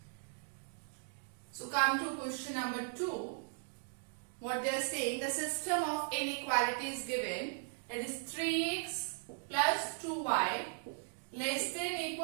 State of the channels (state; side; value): silent; left; digital silence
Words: So come to question number 2. What they are saying, the system of inequalities given, that is 3x plus 2y less than